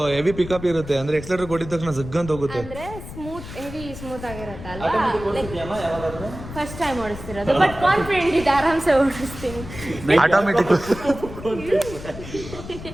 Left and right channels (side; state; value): left; noise; rumble, 12 dB below the sound